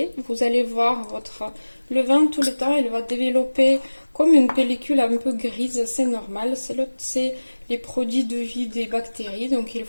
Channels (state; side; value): inverted; both; correlation -1.00